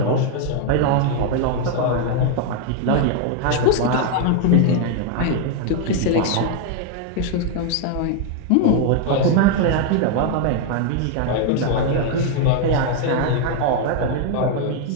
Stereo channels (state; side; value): different; both; correlation 0.01